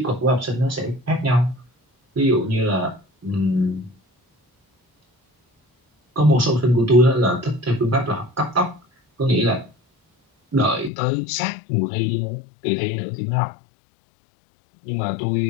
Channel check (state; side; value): drops out; right; at 10.9 s